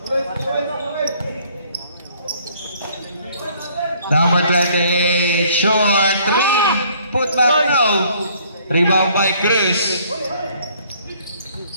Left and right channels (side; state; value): both; inverted; correlation -0.61